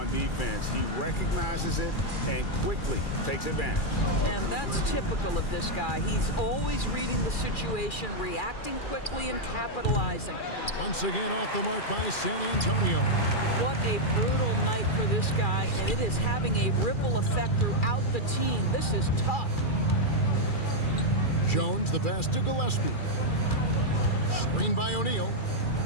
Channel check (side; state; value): right; late; 2.4 ms